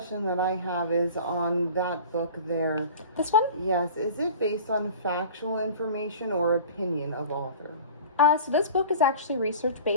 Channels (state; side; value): inverted; both; correlation -0.41